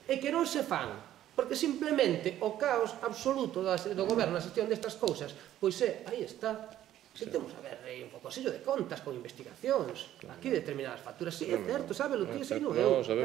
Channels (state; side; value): quieter; left; 12.4 dB